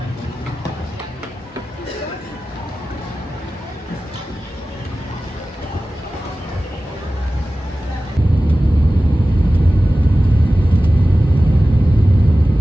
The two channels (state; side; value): normal; both; correlation 0.96